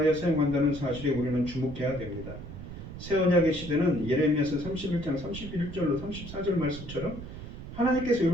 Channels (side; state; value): right; noise; rumble, 11 dB below the sound